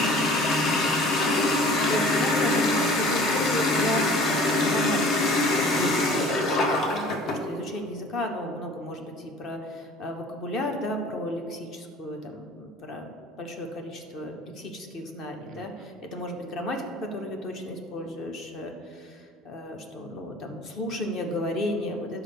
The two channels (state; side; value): normal; both; correlation 0.47